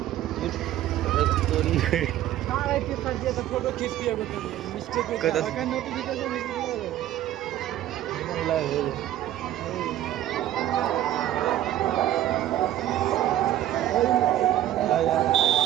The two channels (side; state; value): left; quieter; 12.9 dB